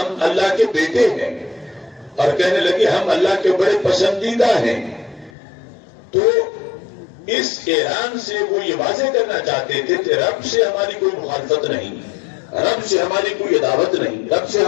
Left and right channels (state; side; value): drops out; right; at 5.3 s